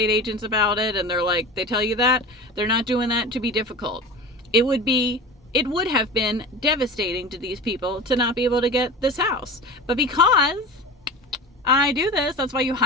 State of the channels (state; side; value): normal; both; correlation 0.33